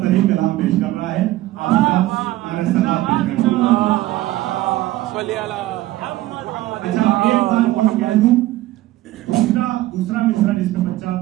तरी कलाम पेश कर रहा है, अच्छा एक बात और कह दूं, दूसरा मिसरा जिसमें बच्चा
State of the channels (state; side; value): quieter; left; 16.2 dB